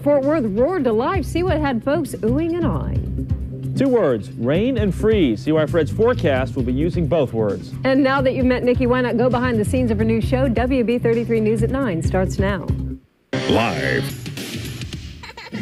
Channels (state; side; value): identical; both; correlation 1.00